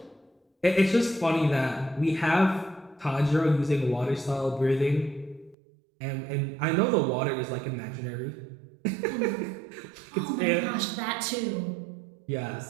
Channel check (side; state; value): left; drops out; at 5.6 s